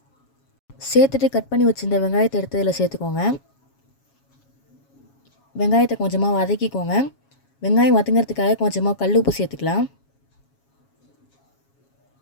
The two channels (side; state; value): right; late; 7.3 ms